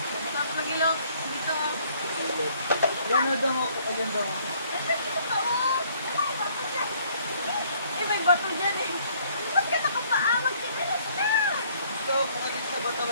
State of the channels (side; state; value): both; inverted; correlation -0.62